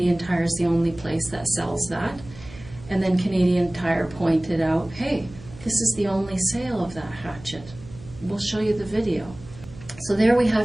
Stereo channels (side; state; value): right; noise; hum, 18 dB below the sound